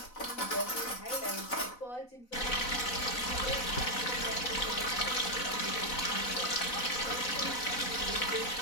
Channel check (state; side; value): late; right; 4.0 ms